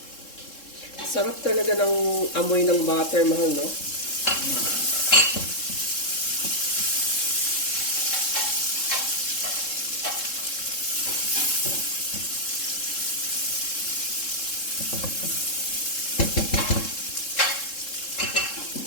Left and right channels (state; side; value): late; right; 3.7 ms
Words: Sarap talaga ng amoy ng butter, mahal, no?